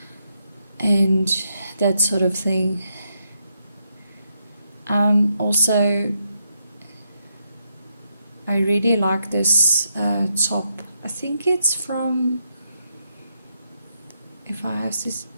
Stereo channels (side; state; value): both; inverted; correlation -0.80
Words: and that sort of thing. Also, I really like this top. I think it's from,